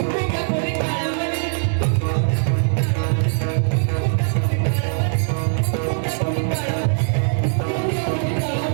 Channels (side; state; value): left; silent; digital silence